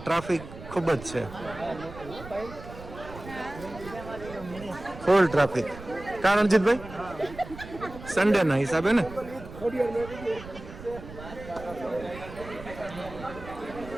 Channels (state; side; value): noise; right; rumble, 14 dB below the sound